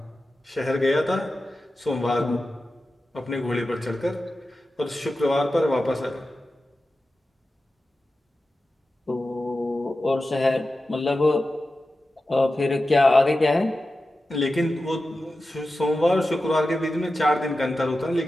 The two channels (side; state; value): both; normal; correlation 0.93